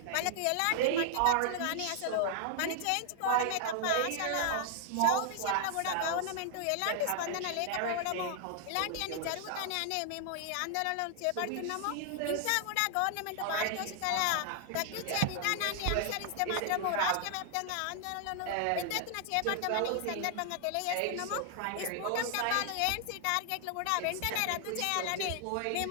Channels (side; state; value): both; different; correlation 0.00